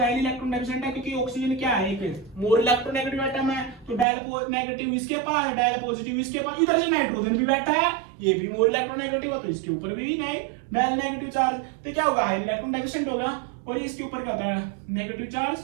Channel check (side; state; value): left; drops out; at 4.0 s